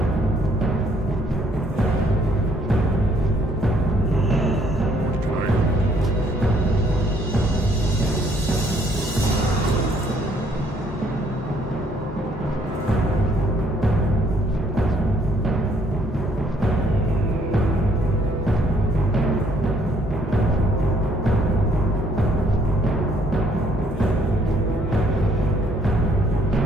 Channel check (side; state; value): both; normal; correlation 0.66